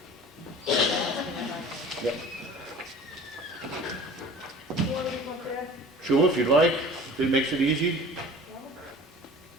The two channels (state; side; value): normal; both; correlation 0.43